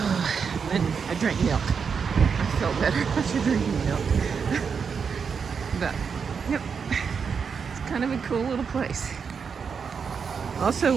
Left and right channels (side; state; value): left; quieter; 6.1 dB